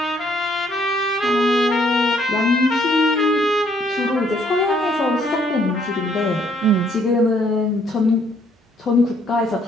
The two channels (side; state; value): both; normal; correlation 0.67